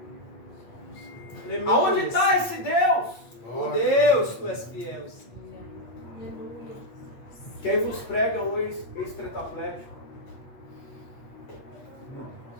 Aleluia. Aonde está esse Deus? Oh Deus, tu és fiel. Quem vos prega um ex-tetraplégico?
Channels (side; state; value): right; late; 8.4 ms